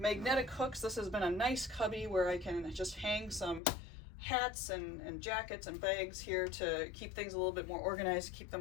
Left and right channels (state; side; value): drops out; right; at 3.6 s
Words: hooks. This has been a nice cubby where I can just hang some hats and jackets and bags here to keep things a little bit more organized, keep them